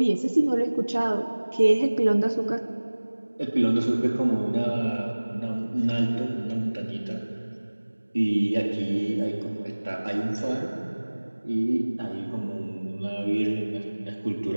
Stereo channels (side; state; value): both; inverted; correlation -1.00